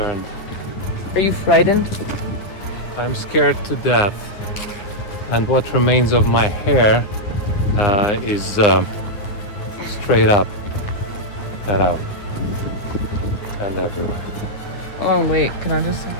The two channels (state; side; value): late; right; 9.5 ms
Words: Are you frightened? I'm scared to death. And what remains of my hair is straight up, cut out, and everywhere. Oh wait, can I just see